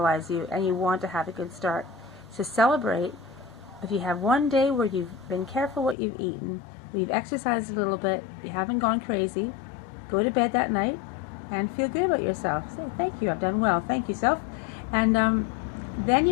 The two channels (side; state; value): right; drops out; at 6.0 s